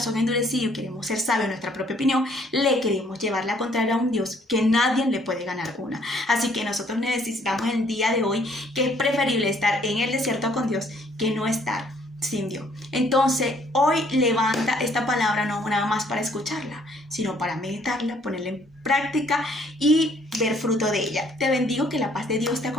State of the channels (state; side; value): normal; both; correlation 0.63